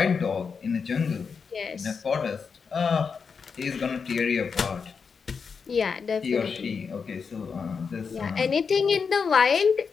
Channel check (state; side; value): quieter; right; 5.7 dB